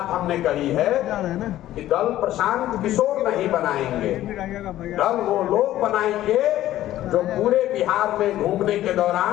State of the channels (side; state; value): right; quieter; 13.8 dB